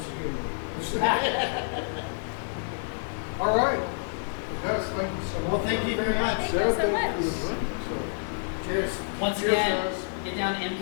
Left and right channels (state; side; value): silent; right; digital silence